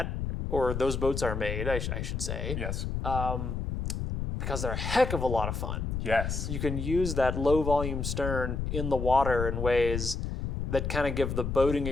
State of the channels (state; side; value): noise; left; rumble, 3 dB below the sound